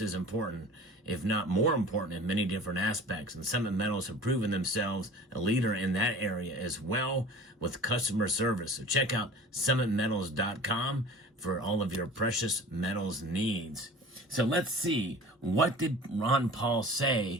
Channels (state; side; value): normal; both; correlation 0.41